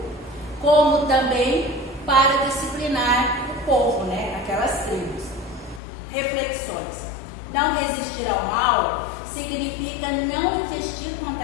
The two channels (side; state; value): right; drops out; at 5.8 s